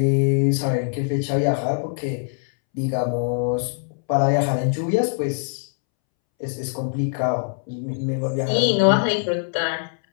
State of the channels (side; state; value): right; silent; 64 dB below the other